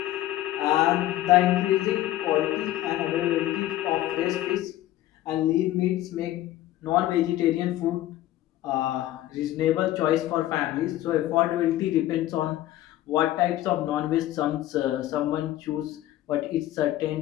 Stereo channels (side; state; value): right; quieter; 14.3 dB